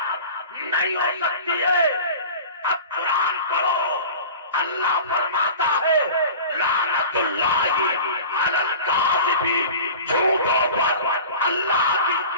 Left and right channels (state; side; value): inverted; both; correlation -0.37